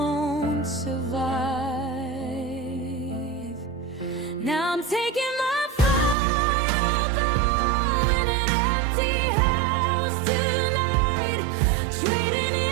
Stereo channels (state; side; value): drops out; left; at 6.2 s